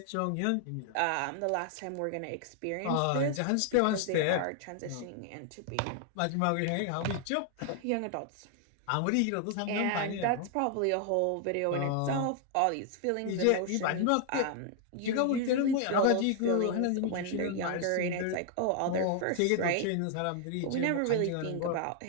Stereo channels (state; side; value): different; both; correlation 0.00